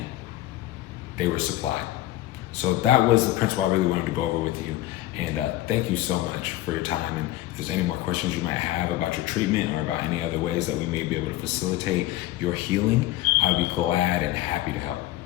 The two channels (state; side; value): quieter; right; 15.5 dB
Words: they were supplied. So that was the principle I really wanted to go over with you. And thank you so much for your time. And if there's any more questions you might have about your treatment or about any other ways that we may be able to facilitate your healing, I'd be glad and happy to help.